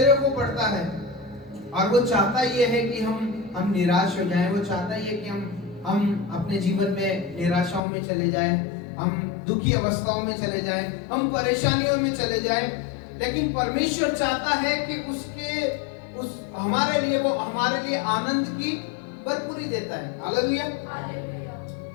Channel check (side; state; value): right; drops out; at 7.8 s